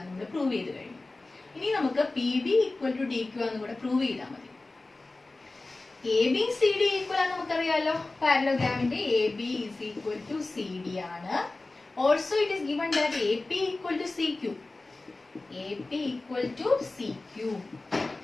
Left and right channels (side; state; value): right; quieter; 3.2 dB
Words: പ്രൂവ് ചെയ്ത് കഴിഞ്ഞു. ഇനി നമുക്ക് PB equal to DQ ആണെന്ന് കൂടെ പ്രൂവ് ചെയ്താൽ മതി. AB CD equal ആണെന്ന് നമുക്കറിയാലോ. പാരലോഗ്രാമിന്റെ AB is equal to CD ആണ്. Also it is given that AP equal to CQ. AP equal to CQ.